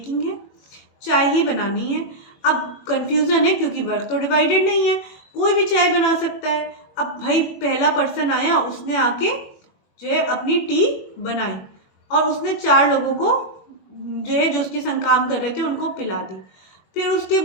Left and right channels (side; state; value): right; late; 22 ms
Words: है, चाय ही बनानी है, अब कन्फ्यूज़न है क्योंकि वर्क तो डिवाइडेड नहीं है, कोई भी चाय बना सकता है। अब भाई पहला पर्सन आया, उसने आके जो है अपनी टी बनाई और उसने 4 लोगों को जो है जो उसके संग काम कर रहे थे उनको पिला दी। फिर उसके